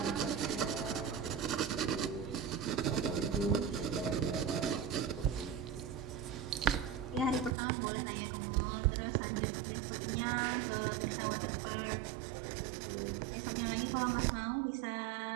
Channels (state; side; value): drops out; left; at 7.6 s